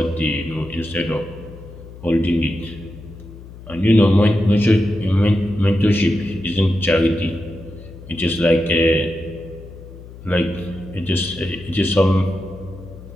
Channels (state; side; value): noise; left; hum, 17 dB below the sound